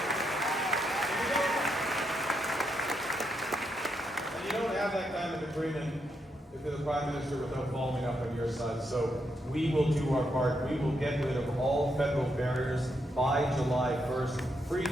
And you don't have that kind of agreement if you're the Prime Minister without following up on your side. So we will do our part. We will get rid of all federal barriers by July 1st. Free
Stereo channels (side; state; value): both; normal; correlation 0.80